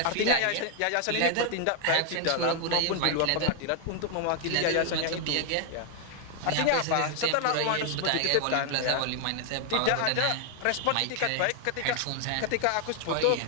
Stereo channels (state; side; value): different; both; correlation 0.00